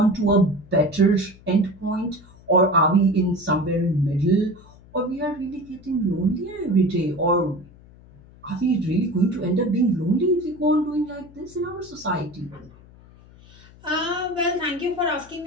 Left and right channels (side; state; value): left; noise; hum, 23 dB below the sound